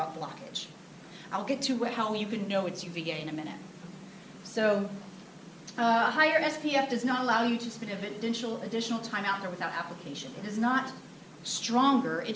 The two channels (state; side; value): identical; both; correlation 1.00